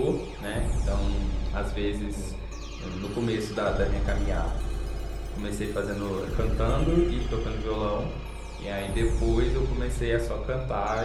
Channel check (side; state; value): both; identical; correlation 1.00